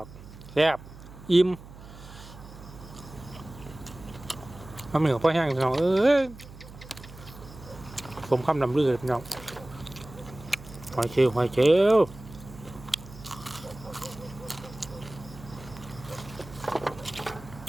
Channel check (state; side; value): noise; right; hum, 17 dB below the sound